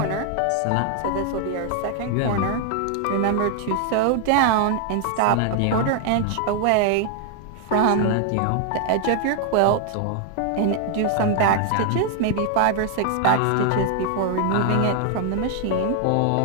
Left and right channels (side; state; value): both; different; correlation 0.00